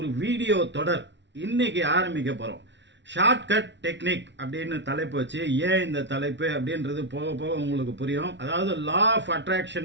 வீடியோ தொடர் இன்னைக்கு ஆரம்பிக்க போகிறோம். ஷார்ட்கட் டெக்னிக் அப்படின்னு தலைப்பு வச்சு, ஏன் இந்த தலைப்பு அப்படின்றது போக போக உங்களுக்கு புரியும். அதாவது லா ஆஃப்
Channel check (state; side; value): late; left; 0.52 ms